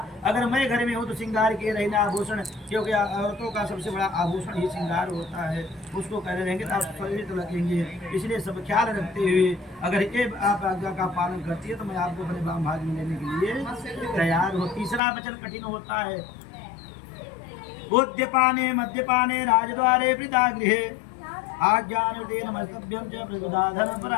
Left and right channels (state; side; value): drops out; right; at 15.0 s